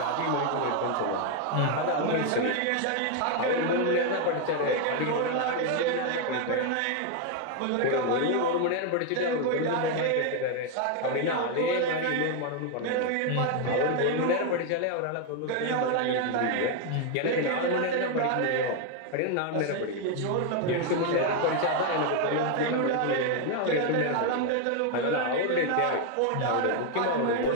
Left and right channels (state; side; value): different; both; correlation 0.01